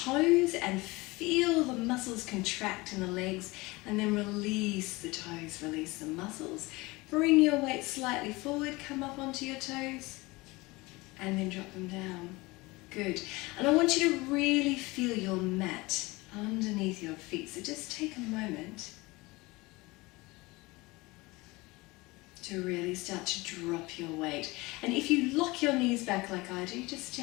and feel the muscles contract in the legs, and then release the toes, release the muscles. Bring your weight slightly forward, come up onto your toes, and then drop them down. Good. And I want you to really feel your mat underneath your feet. So just take a moment to really start to drop your weight. And if you lock your knees back like I do, just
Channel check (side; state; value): right; quieter; 22.7 dB